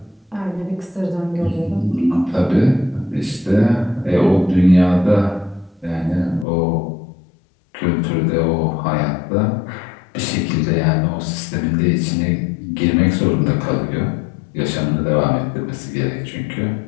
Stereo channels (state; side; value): drops out; right; at 6.5 s